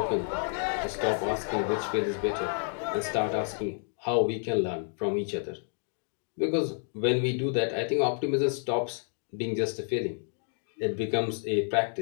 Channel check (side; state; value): right; silent; 58 dB below the other